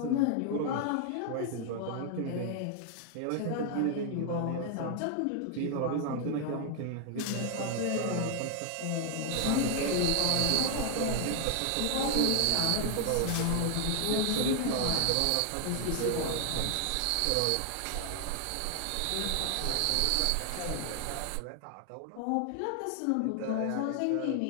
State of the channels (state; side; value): different; both; correlation 0.00